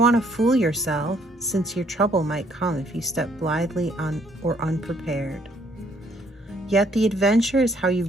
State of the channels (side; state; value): both; normal; correlation 0.66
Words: want to fool yourself, since your trouble might come if you step blithely or unprepared. Yet the adventure is how you